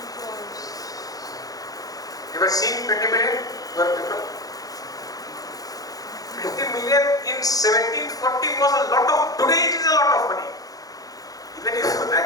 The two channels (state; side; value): late; right; 0.18 ms